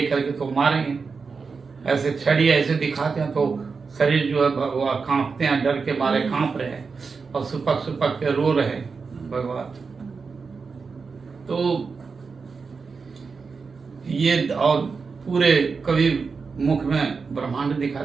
के तो मारेंगे, ऐसे छड़ी ऐसे दिखाते हैं तो शरीर जो है वो कांपते हैं, डर के मारे कांप रहे हैं और सुपक सुपक के रो रहे हैं भगवान। तो ये और पूरे कवि मुख में ब्रह्मांड दिखा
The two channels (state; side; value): quieter; left; 5.0 dB